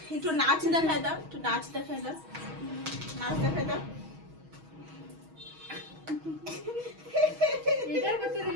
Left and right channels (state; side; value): late; left; 6.3 ms